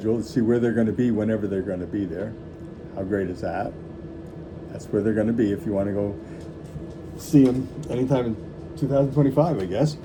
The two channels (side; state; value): both; identical; correlation 1.00